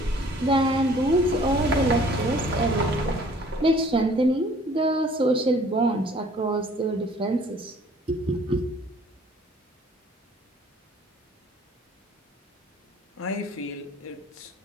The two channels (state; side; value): normal; both; correlation 0.55